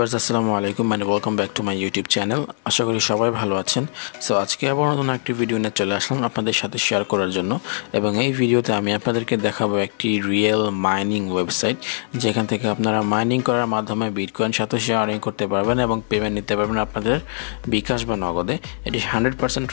আসসালামু আলাইকুম and welcome back to my YouTube channel. আশা করি সবাই ভালো আছেন। সো আজকে আবার নতুন একটি ভিডিও নিয়ে চলে আসলাম আপনাদের সাথে শেয়ার করার জন্য, এবং এই ভিডিওতে আমি আপনাদেরকে দেখাবো একটি রিয়েল মাইনিং ওয়েবসাইট, যেখান থেকে আপনারা মাইনিং করার মাধ্যমে বিটকয়েন সাথে আর্নিং করতে পারবেন এবং পেমেন্ট নিতে পারবেন আপনাদের বিকাশ বা নগদে। এটি 100%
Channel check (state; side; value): silent; right; digital silence